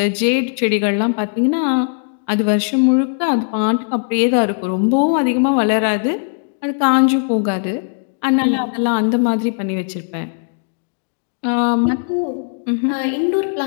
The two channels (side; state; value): right; silent; digital silence